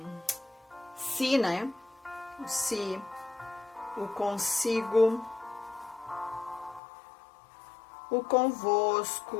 si, né? O si, o consigo, o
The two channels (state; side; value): drops out; right; at 6.8 s